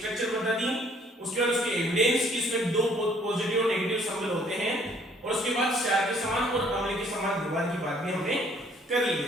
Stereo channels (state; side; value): normal; both; correlation 0.61